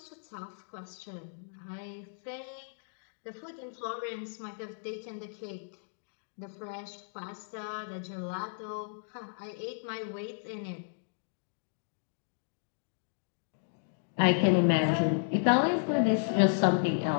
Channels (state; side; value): silent; right; digital silence